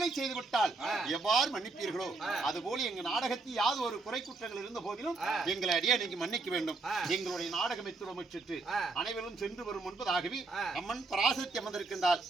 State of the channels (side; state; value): left; quieter; 3.6 dB